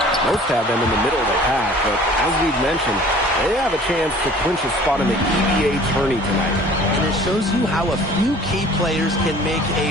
Most have them in the middle of the pack, but as we've mentioned, they have a chance to clinch a spot in the EBA tourney tonight. And it shows you how a few key players can make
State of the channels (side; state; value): both; normal; correlation 0.49